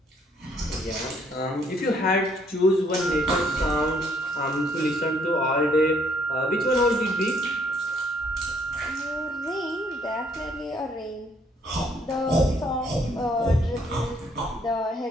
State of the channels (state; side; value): normal; both; correlation 0.66